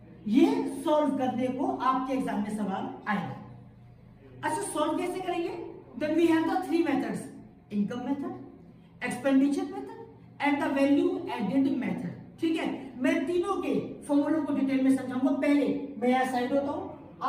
ये सॉल्व करने को आपके एग्जाम में सवाल आएगा। अच्छा, सॉल्व कैसे करेंगे? Then we have the three methods, income method, expenditure method and the value added method. ठीक है, मैं तीनों के फॉर्मूलों को डिटेल में समझाऊंगा। पहले मैं यहां साइड होता हूं,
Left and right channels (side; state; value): both; identical; correlation 1.00